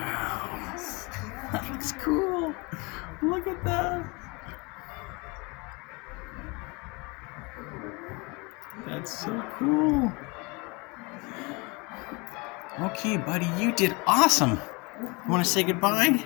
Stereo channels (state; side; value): quieter; right; 27.8 dB